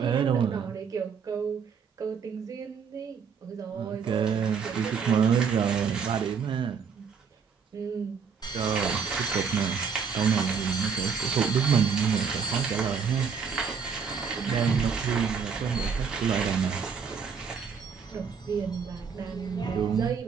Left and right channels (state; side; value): quieter; left; 6.2 dB